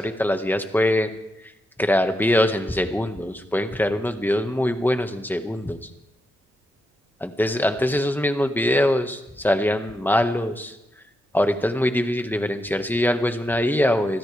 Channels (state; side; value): normal; both; correlation 0.84